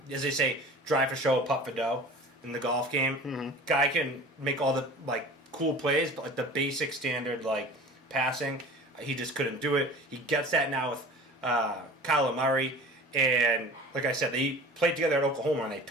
they say, drive for show, putt for dough in the golf game. Mm-hmm. Guy can make all the like cool plays, but like the basic standard like passing, he just couldn't do it. He gets that now with Kyler Murray, and like I said, they played together at Oklahoma and they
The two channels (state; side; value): normal; both; correlation 0.40